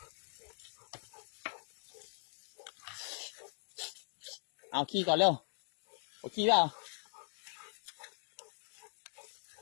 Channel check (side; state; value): right; silent; digital silence